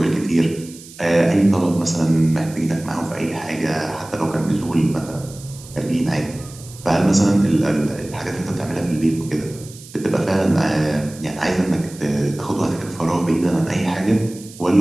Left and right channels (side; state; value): right; noise; hiss, 19 dB below the sound